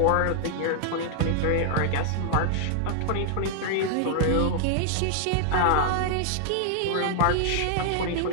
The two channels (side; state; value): both; different; correlation 0.00